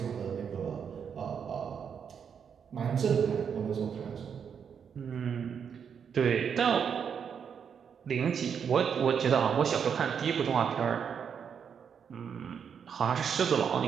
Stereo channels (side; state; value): left; quieter; 7.2 dB